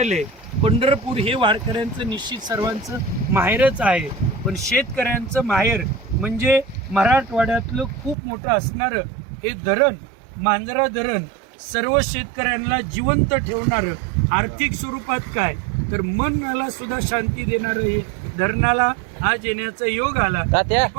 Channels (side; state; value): left; drops out; at 8.2 s